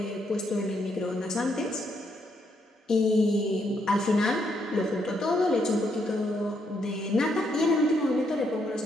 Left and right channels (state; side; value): normal; both; correlation 0.75